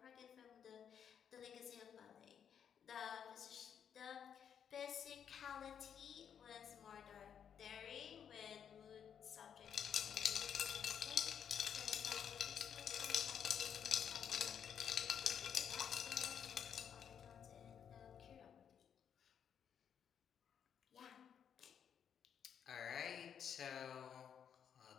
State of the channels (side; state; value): right; quieter; 8.2 dB